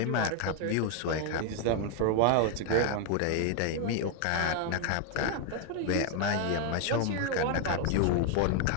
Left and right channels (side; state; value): both; different; correlation 0.00